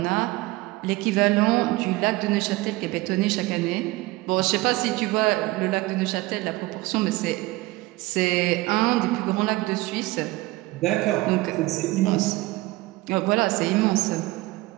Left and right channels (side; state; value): left; quieter; 20.3 dB